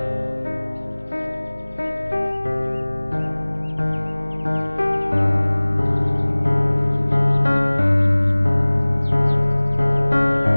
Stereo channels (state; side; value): inverted; both; correlation -1.00